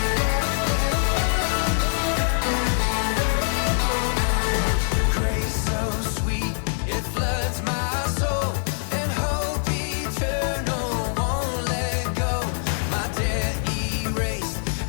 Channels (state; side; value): silent; right; 63 dB below the other